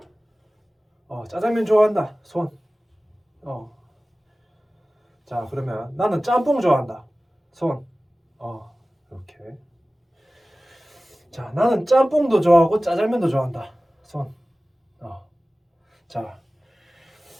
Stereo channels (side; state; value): both; normal; correlation 0.97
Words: 짜장면 좋아한다. 손. 자 그러면 나는 짬뽕 좋아한다. 손. 이렇게. 자 나는 짬뽕도 좋아하고 짜장면도 좋아한다. 손.